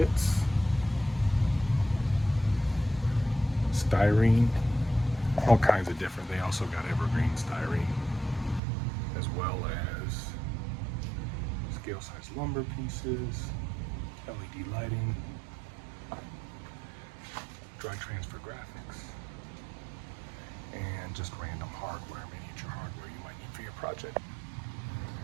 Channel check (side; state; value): left; drops out; at 8.6 s